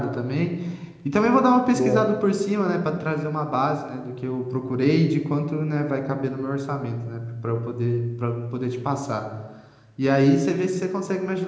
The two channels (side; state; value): both; identical; correlation 1.00